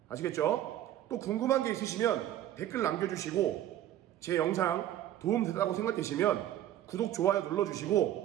아시겠죠? 또 궁금한 게 있으시면 댓글 남겨주시고 제 영상 도움되다고 생각되시면 구독, 좋아요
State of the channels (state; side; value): quieter; left; 12.4 dB